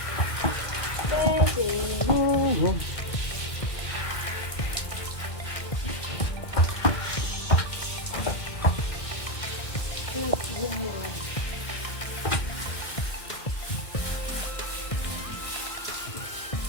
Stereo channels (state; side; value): late; right; 1.8 ms